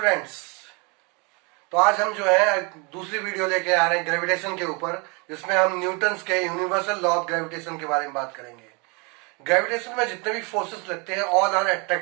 स्टूडेंट्स, तो आज हम जो है दूसरी वीडियो लेके आ रहे हैं ग्रेविटेशन के ऊपर, जिसमें हम न्यूटन्स के यूनिवर्सल लॉ ऑफ ग्रेविटेशन के बारे में बात करेंगे। ग्रेविटेशन में जितने भी फोर्सेस लगते हैं all are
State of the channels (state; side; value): quieter; left; 30.4 dB